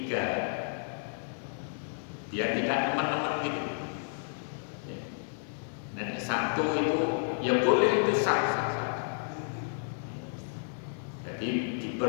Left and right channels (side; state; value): right; silent; 57 dB below the other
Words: Biar tidak teman-teman gitu. Dan 1 itu ya boleh itu sah. Jadi